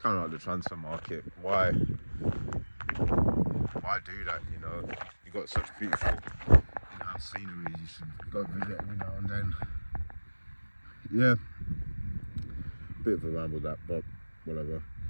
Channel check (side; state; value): both; inverted; correlation -1.00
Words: of like the transfer market, why do that, you know? You got such beautiful in-house scenery, you should go visit every now and then. Yeah, bit of a ramble that, but whatever.